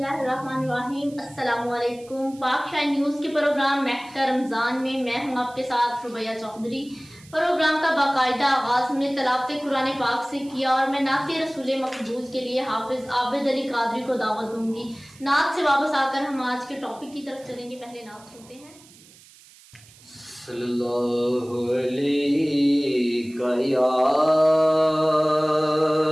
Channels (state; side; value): noise; right; hiss, 24 dB below the sound